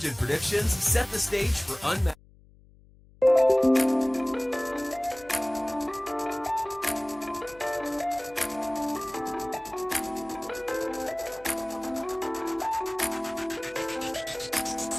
and predictions set the stage for unmatched.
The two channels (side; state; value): left; noise; hum, 26 dB below the sound